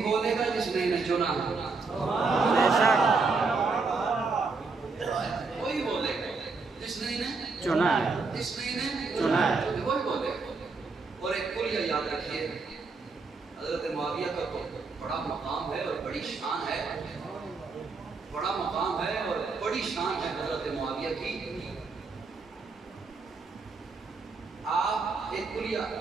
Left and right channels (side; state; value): left; quieter; 4.2 dB